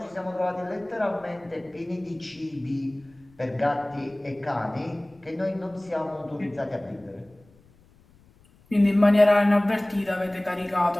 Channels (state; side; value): noise; left; rumble, 29 dB below the sound